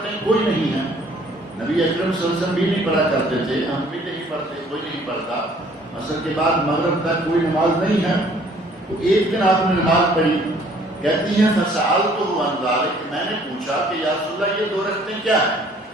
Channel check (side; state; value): both; normal; correlation 0.58